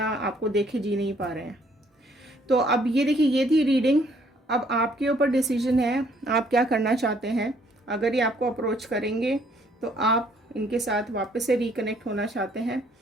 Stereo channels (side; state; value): both; normal; correlation 0.64